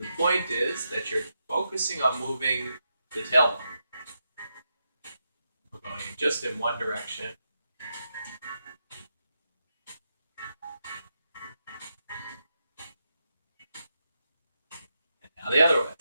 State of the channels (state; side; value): inverted; both; correlation -0.85